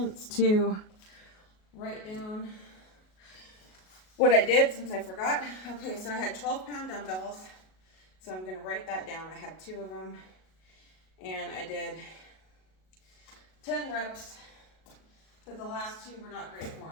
to write down what I did since I forgot. Okay, so I had 12-pound dumbbells. So I'm going to write that down. I had 2 of them. And I did 10 reps, but the last 2 were not great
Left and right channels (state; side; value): late; right; 37 ms